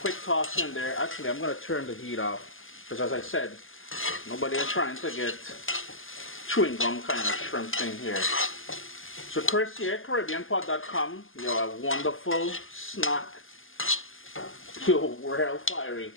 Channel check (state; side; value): late; right; 0.59 ms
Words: toss in there. Actually, I'm going to turn the heat off because, as I said, nobody is trying to get chewing gum kind of shrimp thing here. So Chris here, CaribbeanPot.com. Yo, a wonderful snack. Yo, we're hell fiery.